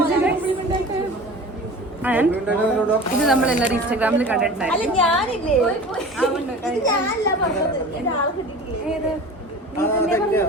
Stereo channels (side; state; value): both; normal; correlation 0.38